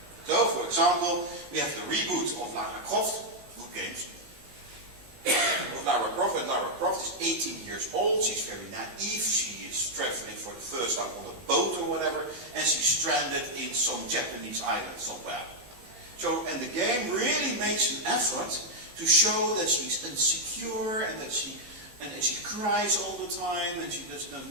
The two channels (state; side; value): late; left; 17 ms